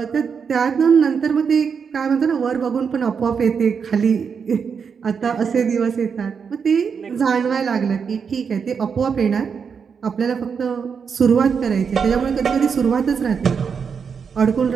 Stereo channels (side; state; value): left; quieter; 6.3 dB